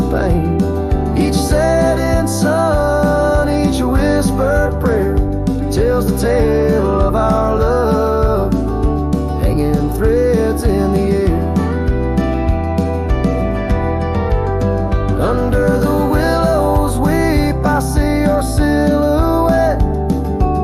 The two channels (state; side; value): identical; both; correlation 1.00